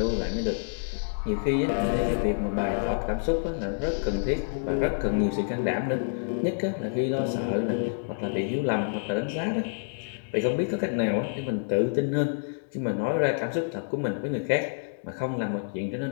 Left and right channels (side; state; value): right; silent; 59 dB below the other